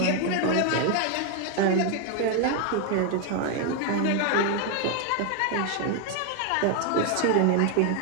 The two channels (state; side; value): different; both; correlation 0.01